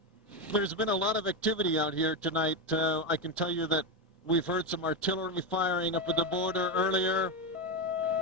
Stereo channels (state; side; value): normal; both; correlation 0.11